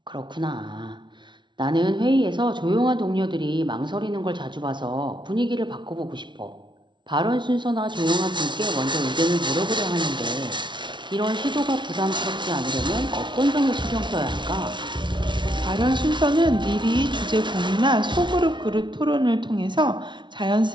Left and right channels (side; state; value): left; late; 0.23 ms